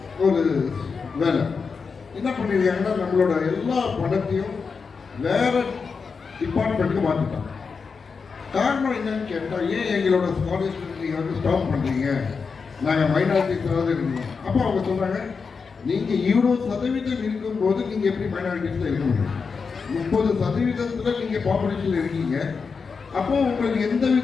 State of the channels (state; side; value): quieter; right; 5.2 dB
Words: ஒரு வேலை என்ன பண்ணியிருக்காங்கன்னா நம்மளோட எல்லா பணத்தையும் வேற டிபார்ட்மெண்ட்டுக்கு மாற்றிட்டாங்க. காரணம் என்னன்னு கேட்டால், ஏன் எங்களோட ஸ்காலர்ஷிப் நீங்கள் வந்து ஸ்டாப் பண்ணுறீங்க, நாங்கள் மைனாரிட்டிஸாவது இருக்கணும். அப்போ அவங்க சொல்கிறாங்க, நீங்கள் இவ்வளோ சதவீதம் இருக்கும்போது நீங்கள் எப்படி மைனாரிட்டிஸில் இருக்க முடியும்? 30% நீங்கள் பாப்புலேஷனில் இருக்கீங்க. அப்போ உங்களுக்கு எந்த